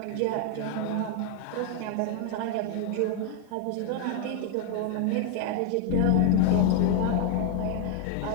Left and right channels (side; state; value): both; different; correlation 0.00